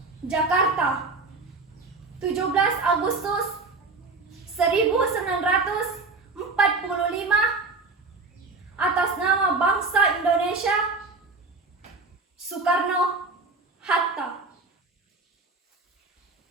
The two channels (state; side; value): quieter; left; 3.7 dB